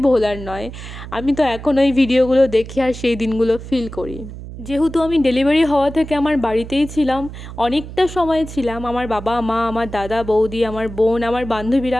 ভোলার নয়। আমি তো এখন ওই ভিডিওগুলো দেখি আর সেই দিনগুলো ফিল করি। যেহেতু আমি ডেলিভারি হওয়া থেকে আমার বাড়িতেই ছিলাম, অনেকটা সময় ছিলাম, আমার বাবা মা, আমার দাদা বৌদি, আমার বোন, আমার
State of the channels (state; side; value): noise; right; hum, 12 dB below the sound